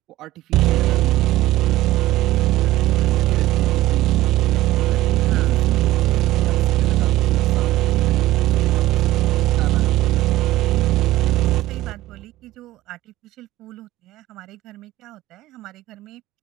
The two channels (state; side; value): quieter; left; 16.2 dB